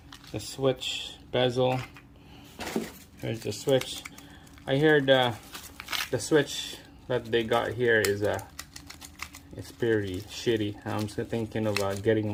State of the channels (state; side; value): identical; both; correlation 1.00